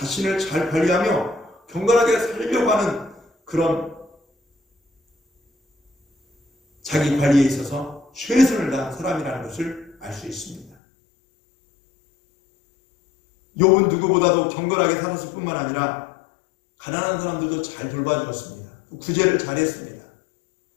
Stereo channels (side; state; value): right; drops out; at 10.8 s